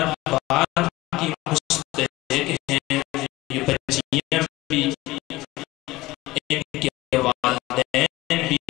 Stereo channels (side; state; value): right; quieter; 18.8 dB